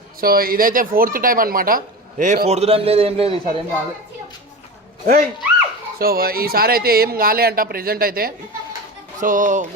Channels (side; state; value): both; normal; correlation 0.27